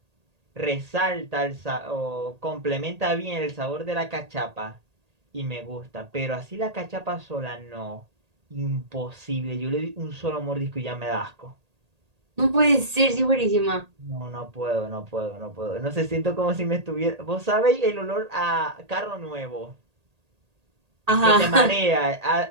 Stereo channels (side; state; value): left; late; 1.8 ms